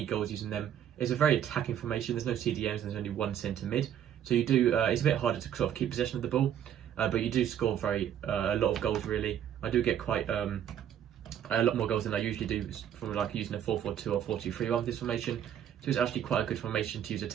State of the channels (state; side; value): quieter; left; 9.9 dB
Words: goals using them. It's a very attacking formation. There's no CDMs and there's only one centre mid, so you do. It's a bit harder to sort of keep possession of the ball. But you do score a lot of goals really. I do get quite a lot more goals than I usually do from like using a 4-4-2 or 4-2-3-1 with this formation. So it's actually quite a good formation to use